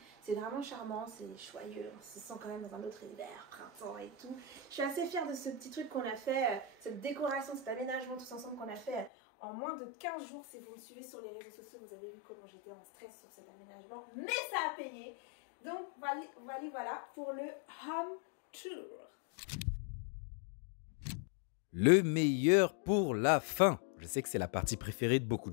C'est vraiment charmant, c'est joyeux, on se sent quand même dans un autre univers, printemps et tout. Je suis assez fière de ce petit truc qu'on a fait, cette décoration, cet aménagement tous ensemble qu'on a fait en moins de 15 jours. Si vous me suivez sur les réseaux sociaux, vous avez vu comment j'étais en stress sur cet aménagement, mais ça a payé. Donc voilà pour le home tour. Le meilleur pour la fin. Je sais que c'est la partie préférée de beaucoup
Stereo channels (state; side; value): drops out; right; at 9.1 s